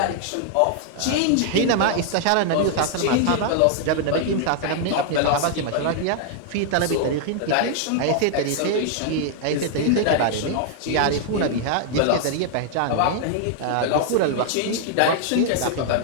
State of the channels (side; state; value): both; different; correlation 0.00